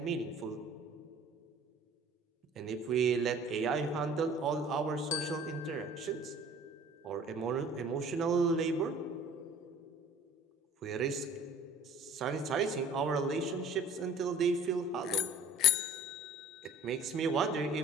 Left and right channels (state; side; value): normal; both; correlation 0.48